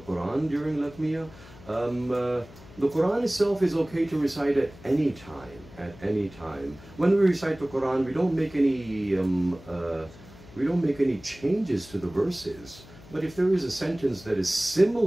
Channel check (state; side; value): noise; left; hum, 20 dB below the sound